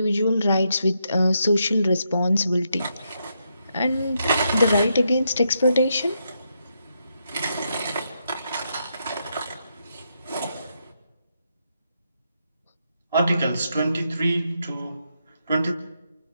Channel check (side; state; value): both; inverted; correlation -0.81